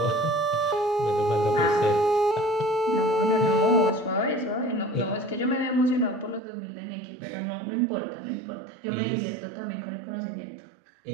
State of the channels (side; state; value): left; drops out; at 6.4 s